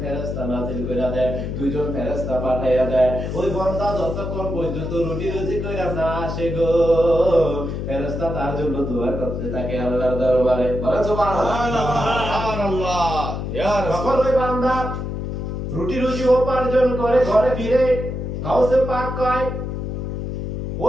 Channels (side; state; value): left; noise; hum, 4 dB below the sound